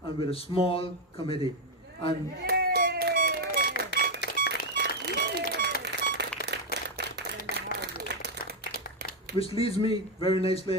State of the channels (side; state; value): both; normal; correlation 0.04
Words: and with a small committee. And which leads me very